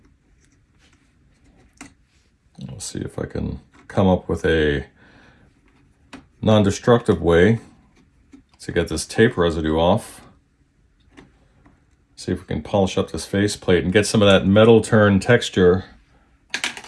Let's see if I can come up with a non-destructive way to get this tape residue off. See if we can polish up this faceplate and get some of that metal turn texture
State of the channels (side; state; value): both; identical; correlation 1.00